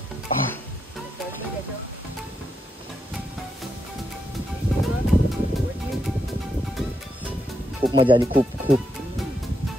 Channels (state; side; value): normal; both; correlation 0.82